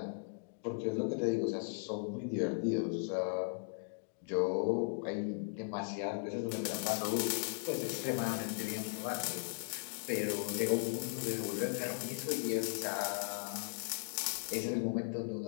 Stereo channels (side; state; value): right; silent; digital silence